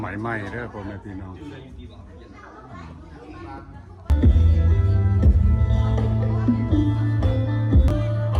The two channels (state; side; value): identical; both; correlation 1.00